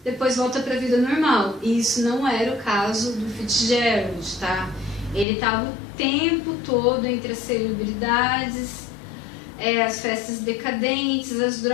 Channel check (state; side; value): drops out; right; at 5.2 s